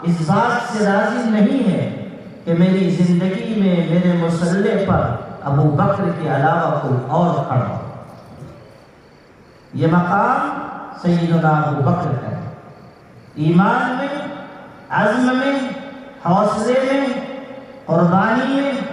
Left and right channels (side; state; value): both; identical; correlation 1.00